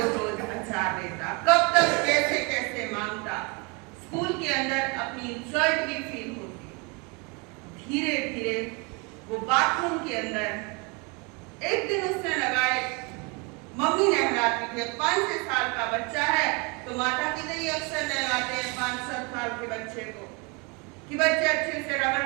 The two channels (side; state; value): left; quieter; 30.6 dB